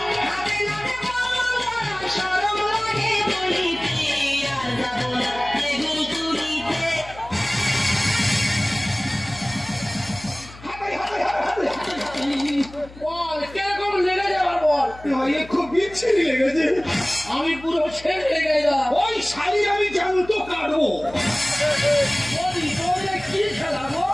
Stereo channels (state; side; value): noise; left; hum, 19 dB below the sound